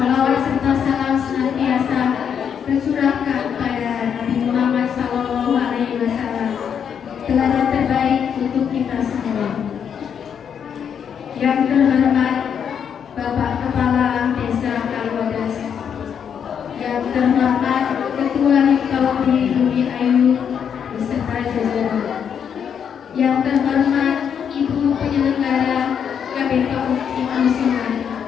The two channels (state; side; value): quieter; right; 7.8 dB